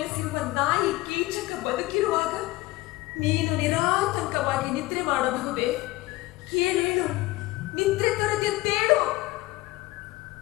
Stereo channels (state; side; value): quieter; right; 19.1 dB